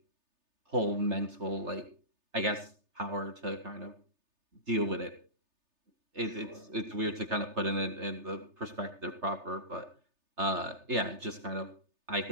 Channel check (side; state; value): left; late; 3.3 ms